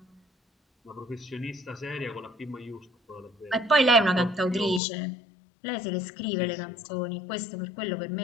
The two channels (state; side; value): drops out; right; at 4.8 s